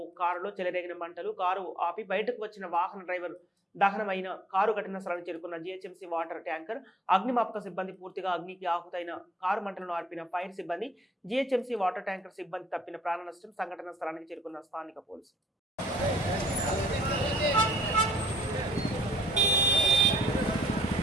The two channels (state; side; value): normal; both; correlation 0.63